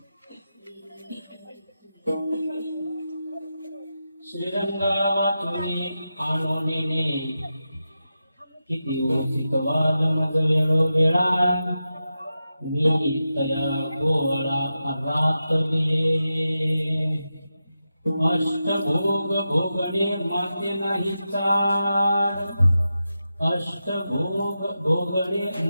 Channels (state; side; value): inverted; both; correlation -0.90